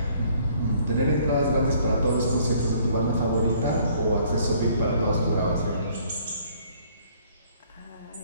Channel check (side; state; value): both; inverted; correlation -0.61